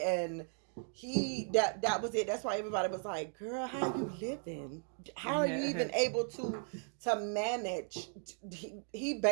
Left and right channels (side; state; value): left; silent; 53 dB below the other